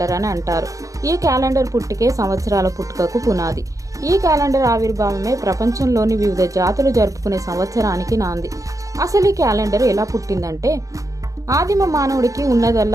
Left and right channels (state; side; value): late; left; 0.16 ms